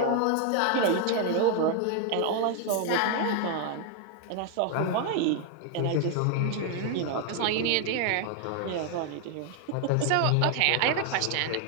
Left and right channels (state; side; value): different; both; correlation 0.00